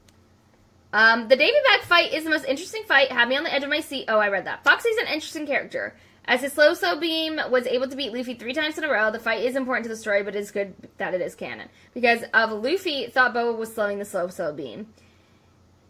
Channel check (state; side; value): identical; both; correlation 1.00